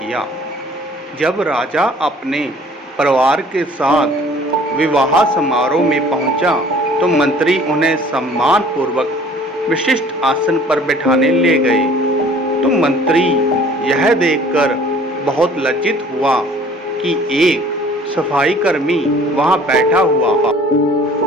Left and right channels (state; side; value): normal; both; correlation 0.52